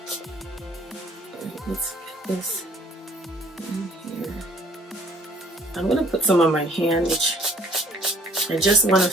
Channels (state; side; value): normal; both; correlation 0.60